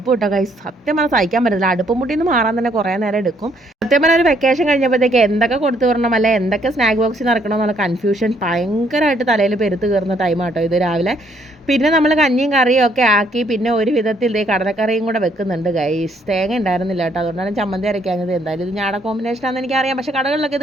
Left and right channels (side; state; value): both; normal; correlation 0.68